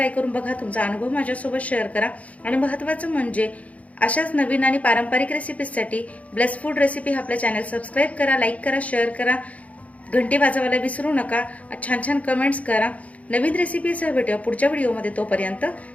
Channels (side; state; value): right; late; 0.068 ms